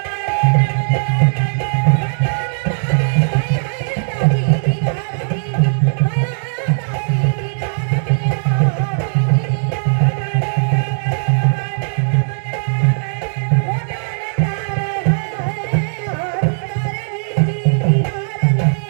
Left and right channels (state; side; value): silent; left; digital silence